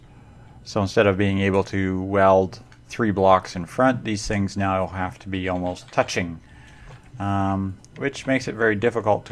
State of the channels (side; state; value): both; identical; correlation 1.00